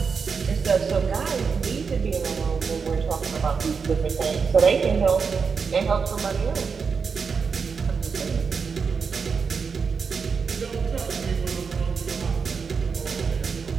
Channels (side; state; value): left; quieter; 5.6 dB